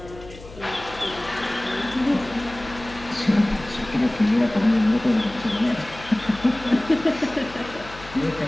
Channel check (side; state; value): left; noise; hum, 17 dB below the sound